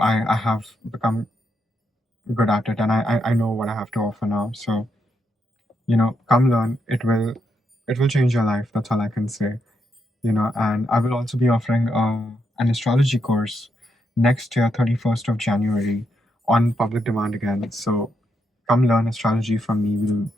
have become good at it, and I know what I have to offer now. So come learn. It will change your life. That's all I can say. And I will also be offering an astrology course next year, 31st of January, on public demand again. So come learn astrology from me.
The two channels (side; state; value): both; normal; correlation 0.80